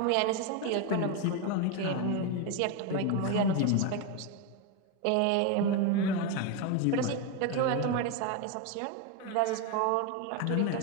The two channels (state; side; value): different; both; correlation 0.02